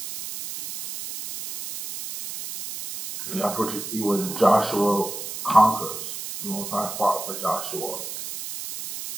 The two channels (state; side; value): noise; right; hiss, 8 dB below the sound